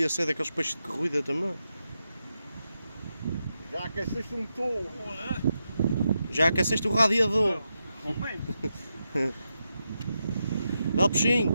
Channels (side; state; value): both; inverted; correlation -0.87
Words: ser daqueles peixes de corrida também. Já aqueceste um motor. Já aqueceste o radiador. Momento. Dá o peixinho.